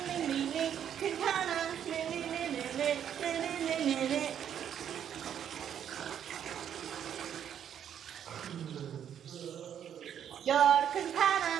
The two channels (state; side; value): quieter; left; 9.3 dB